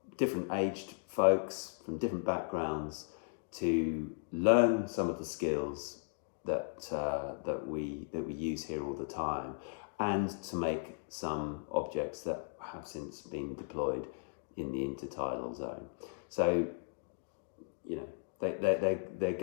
different aged folks from different backgrounds to learn some of the skills that we use here all the time, and to make some objects that have since been deployed in the intertidal zone. So, they're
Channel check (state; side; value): silent; right; digital silence